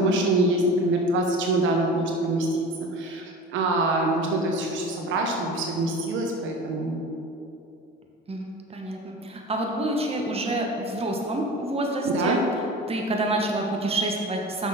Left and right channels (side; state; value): both; normal; correlation 0.35